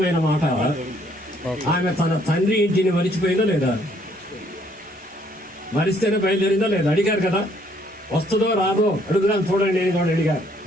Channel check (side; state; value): both; normal; correlation 0.65